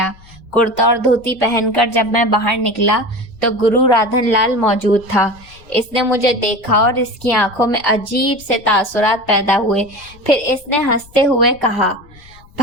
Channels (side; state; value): left; noise; rumble, 24 dB below the sound